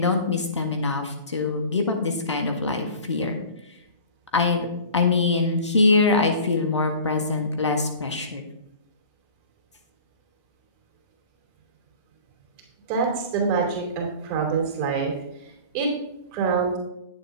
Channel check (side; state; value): both; inverted; correlation -0.41